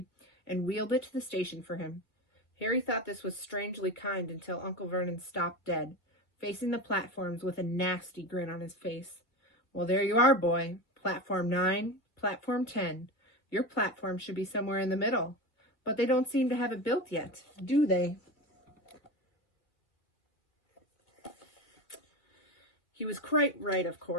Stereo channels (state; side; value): late; right; 2.5 ms